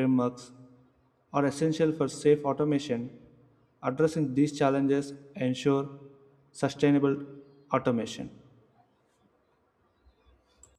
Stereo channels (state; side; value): identical; both; correlation 1.00